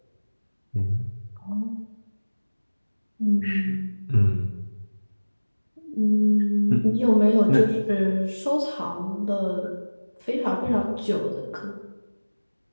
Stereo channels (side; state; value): both; inverted; correlation -1.00